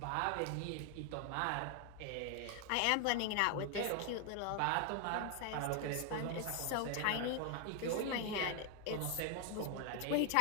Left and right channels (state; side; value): different; both; correlation 0.01